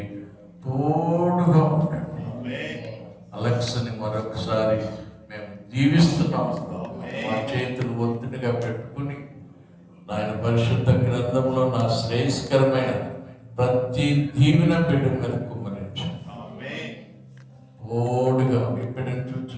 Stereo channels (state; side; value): identical; both; correlation 1.00